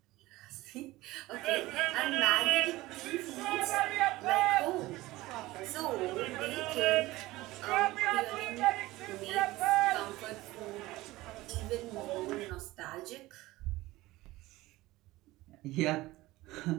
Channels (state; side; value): quieter; left; 18.6 dB